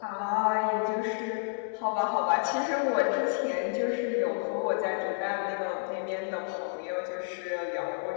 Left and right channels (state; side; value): silent; right; digital silence